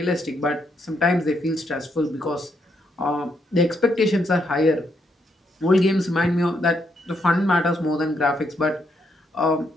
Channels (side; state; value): both; normal; correlation 0.77